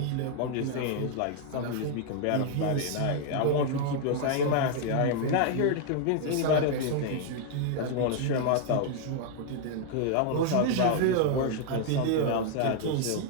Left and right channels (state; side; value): different; both; correlation 0.00